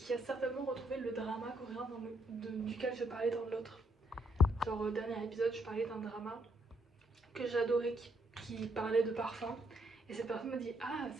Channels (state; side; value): normal; both; correlation 0.73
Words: a certainement retrouvé le drama coréen duquel je parlais dans l'autre. Genre au dernier épisode je parlais d'un drama que j'adorais qui parlait de parfum. Et cette personne me dit ah